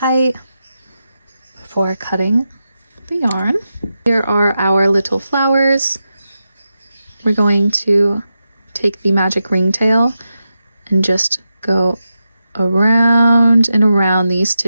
before cutting the yarn. Here are our little flowers. We're going to take the magic ringtail and just go around and around these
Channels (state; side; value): inverted; both; correlation -0.89